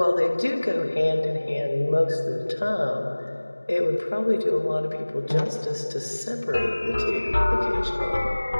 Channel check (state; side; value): inverted; both; correlation -1.00